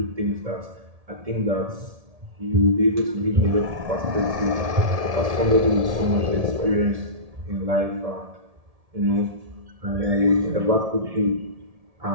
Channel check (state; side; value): late; left; 1.7 ms